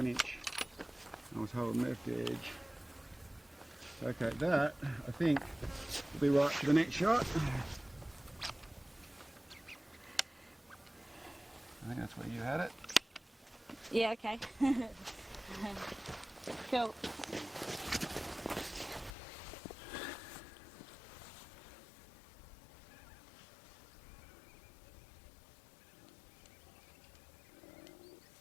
inch. I was holding left edge. Okay, that I think will be right for the next shot. I think that's where you had it. Yeah, okay. Cool.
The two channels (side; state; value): right; drops out; at 19.1 s